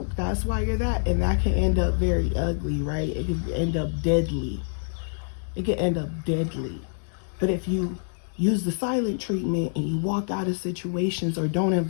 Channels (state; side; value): silent; right; digital silence